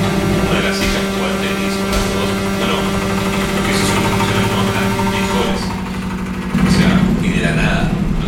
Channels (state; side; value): identical; both; correlation 1.00